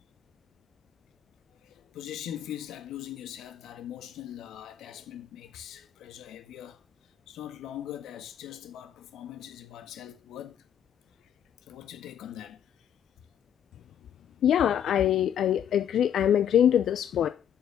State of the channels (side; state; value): right; quieter; 9.6 dB